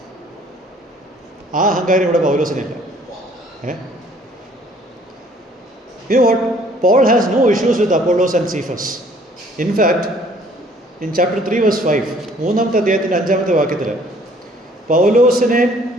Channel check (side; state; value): both; normal; correlation 0.58